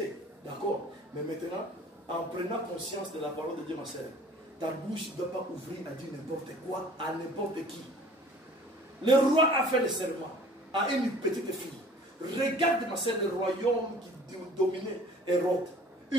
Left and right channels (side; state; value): both; normal; correlation 0.50